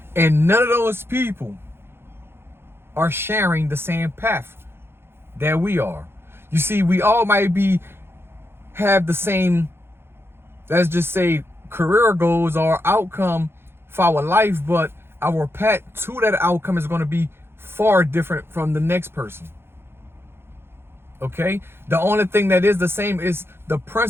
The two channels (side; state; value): left; late; 0.11 ms